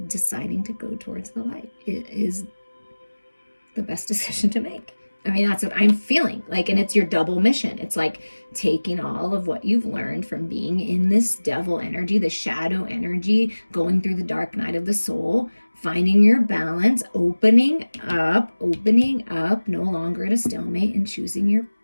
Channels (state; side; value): inverted; both; correlation -1.00